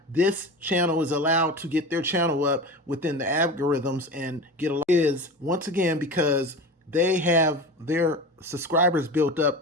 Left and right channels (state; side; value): normal; both; correlation 0.30